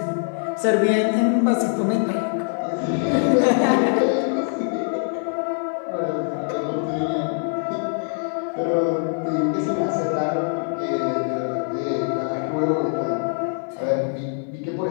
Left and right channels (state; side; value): silent; right; 57 dB below the other